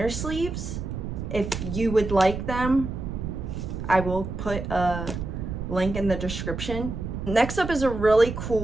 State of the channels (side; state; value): right; noise; rumble, 6 dB below the sound